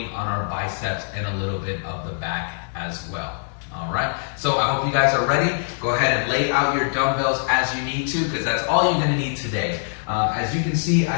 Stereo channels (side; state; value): right; silent; digital silence